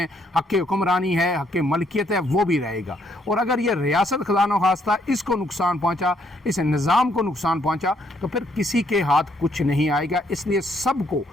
حق حکمرانی ہے، حق ملکیت ہے، وہ بھی رہے گا۔ اور اگر یہ ریاست خدا نخواستہ اس کو نقصان پہنچا، اس نظام کو نقصان پہنچا، تو پھر کسی کے ہاتھ کچھ نہیں آئے گا۔ اس لیے سب کو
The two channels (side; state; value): both; normal; correlation 0.70